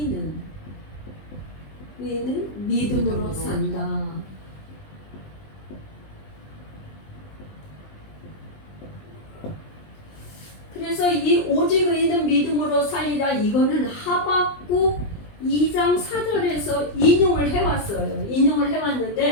믿음으로 산다. 그래서 이 오직 의인은 믿음으로 살리라 이거는 하박국 2장 4절에서 인용을 해왔어요. 인용을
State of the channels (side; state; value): right; late; 20 ms